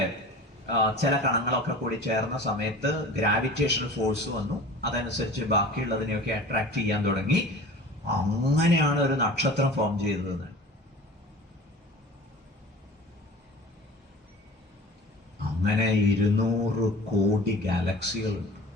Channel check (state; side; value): normal; both; correlation 0.40